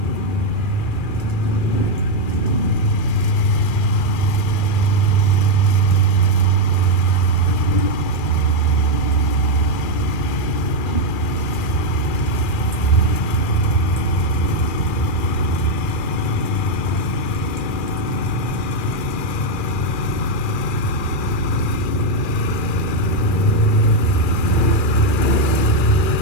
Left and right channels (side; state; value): right; late; 2.4 ms